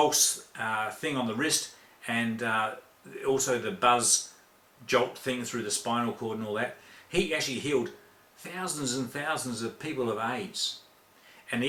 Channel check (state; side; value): identical; both; correlation 1.00